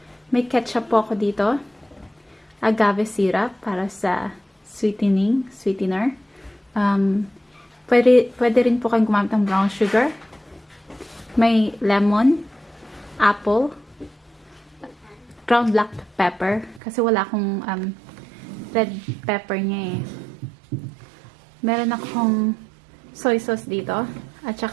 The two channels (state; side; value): drops out; left; at 16.8 s